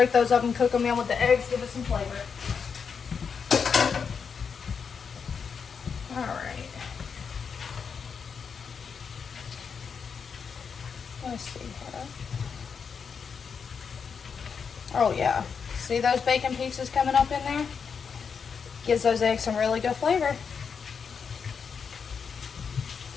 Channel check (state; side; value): quieter; right; 6.2 dB